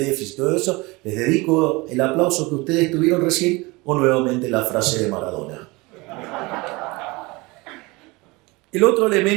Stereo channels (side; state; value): left; quieter; 24.3 dB